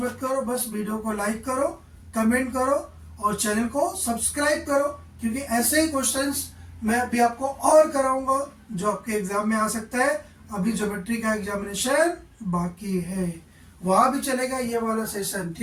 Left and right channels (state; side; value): identical; both; correlation 1.00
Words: मत करो, बस वीडियो को लाइक करो, कमेंट करो और चैनल को सब्सक्राइब करो, क्योंकि ऐसे ही क्वेश्चंस मैं अभी आपको और कराऊंगा जो आपके एग्जाम में आ सकता है। अभी ज्योमेट्री का एग्जामिनेशन बाकी है, वहां भी चलेगा ये वाला सेशन,